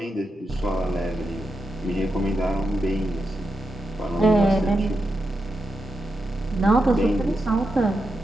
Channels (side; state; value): both; normal; correlation 0.87